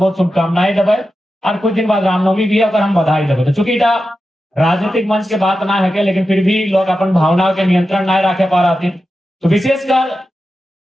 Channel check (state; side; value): normal; both; correlation 0.91